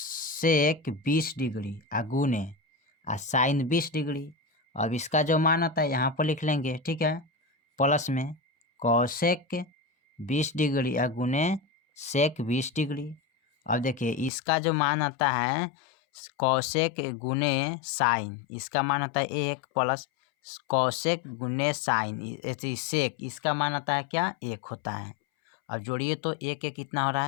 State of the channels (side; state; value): right; drops out; at 14.3 s